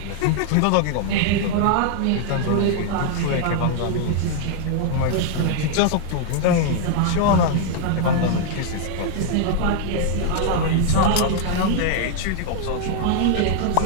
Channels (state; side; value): different; both; correlation 0.00